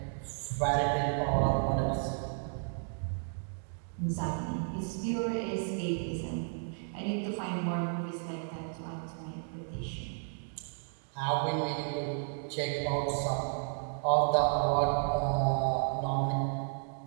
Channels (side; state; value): left; silent; 56 dB below the other